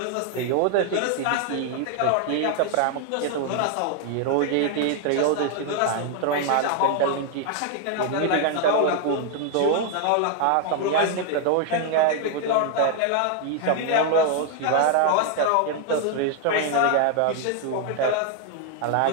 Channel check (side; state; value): both; different; correlation 0.00